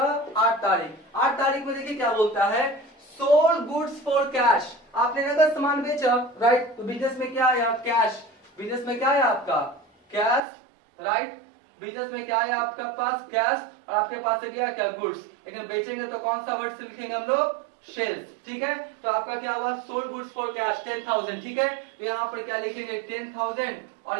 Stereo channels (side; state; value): left; drops out; at 10.4 s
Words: 8 तारीख। 8 तारीख में देखिए क्या बोलता है, सोल्ड गुड्स फॉर कैश, आपने नगद सामान बेचा, राइट, तो बिजनेस में क्या आया कैश, बिजनेस में क्या है आपका कैश, राइट, बिजनेस में क्या है आपका पास कैश, और आपके पास है क्या गुड्स, लेकिन बेचेंगे तो कौन सा वर्ड से लिखेंगे हम लोग, सेल्स। ठीक है, तो आपका क्या हुआ सोल्ड गुड्स फॉर कैश 10,000। ठीक है, तो यहाँ पर क्या लिखेंगे 10,000,